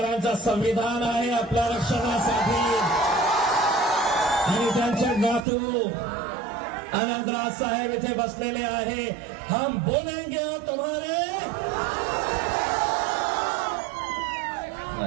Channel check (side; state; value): left; drops out; at 5.5 s